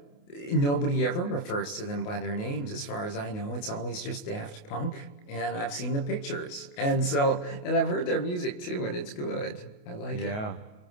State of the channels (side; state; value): right; late; 28 ms